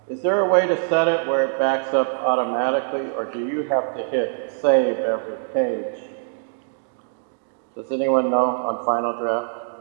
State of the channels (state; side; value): silent; left; digital silence